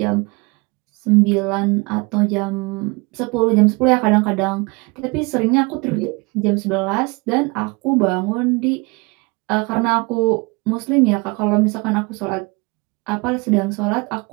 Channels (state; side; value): quieter; left; 27.8 dB